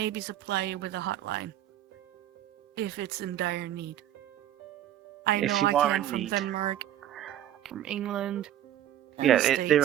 supply you with a hotline if it's in dire need. I If know you I are can in from need. Denmark, from England. And Yeah, the there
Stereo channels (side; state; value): left; quieter; 12.0 dB